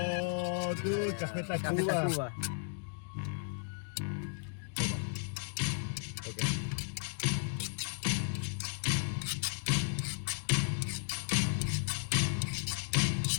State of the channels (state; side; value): silent; right; digital silence